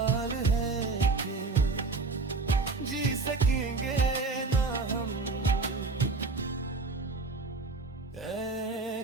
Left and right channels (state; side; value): quieter; left; 3.9 dB